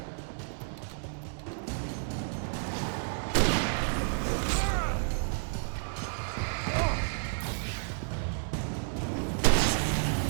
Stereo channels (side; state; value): left; silent; digital silence